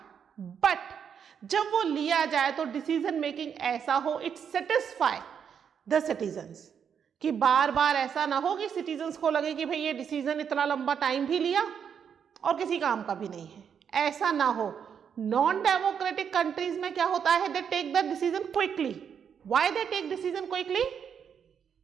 बट जब वो लिया जाए तो डिसीजन मेकिंग ऐसा हो इट सेटिस्फाई द सिटीजन्स, कि बार बार ऐसा ना हो कि सिटीजन्स को लगे कि भाई ये डिसीजन इतना लंबा टाइम भी लिया और किसी काम का भी नहीं है। ऐसा ना हो। नॉन डेमोक्रेटिक कंट्रीज में क्या होता है? They take the decision quickly. Why they take decision quickly?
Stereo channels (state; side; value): quieter; left; 7.6 dB